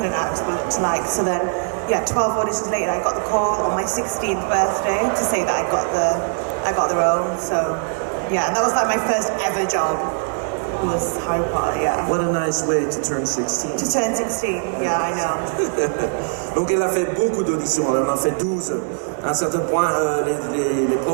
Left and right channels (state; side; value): silent; left; 58 dB below the other